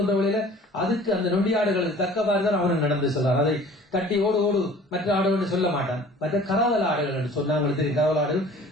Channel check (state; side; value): normal; both; correlation 0.48